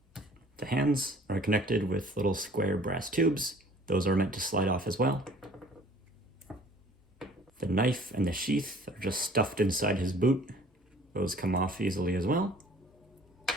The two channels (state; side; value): normal; both; correlation 0.52